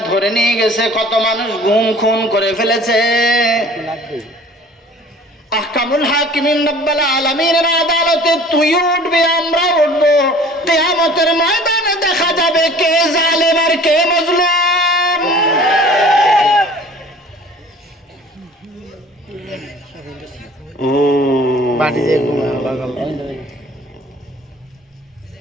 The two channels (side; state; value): both; normal; correlation 0.48